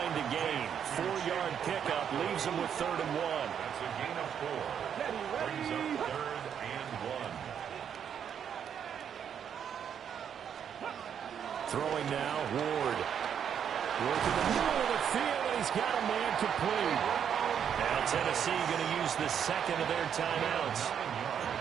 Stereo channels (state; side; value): quieter; left; 8.3 dB